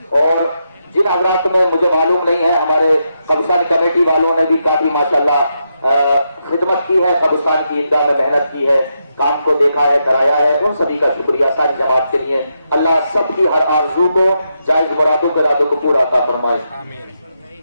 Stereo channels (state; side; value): inverted; both; correlation -0.83